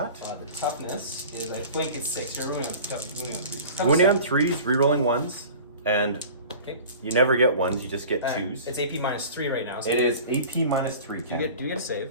The toughness is, I think it's 6. You're wounding on 3s. Wounding on 3s, re-rolling 1s, and Okay. you never get 1s. You just get 2s. It's AP -3 right now. So It is AP -3, do Ken. you get a save?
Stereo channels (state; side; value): inverted; both; correlation -0.41